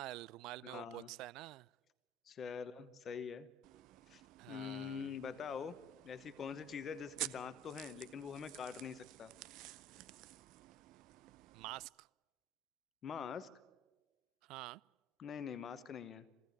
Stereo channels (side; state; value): both; normal; correlation 0.51